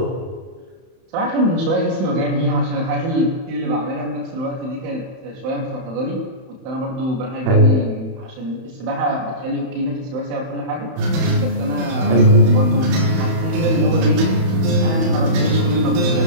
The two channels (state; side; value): late; left; 31 ms